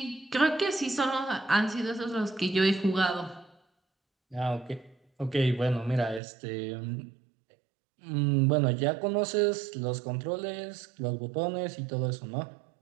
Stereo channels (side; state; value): left; drops out; at 6.2 s